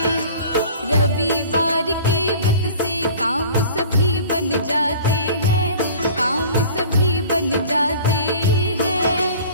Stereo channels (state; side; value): inverted; both; correlation -0.44